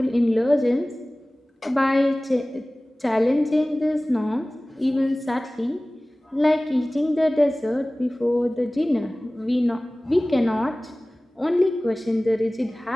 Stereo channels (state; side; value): normal; both; correlation 0.98